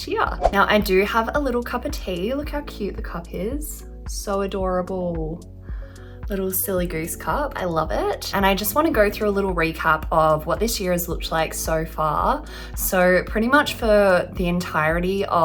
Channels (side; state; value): both; identical; correlation 1.00